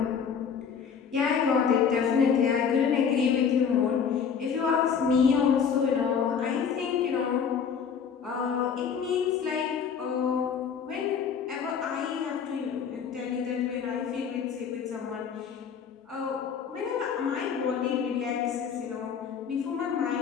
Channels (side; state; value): right; quieter; 6.9 dB